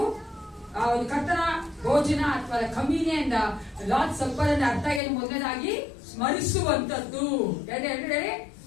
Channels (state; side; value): drops out; right; at 5.0 s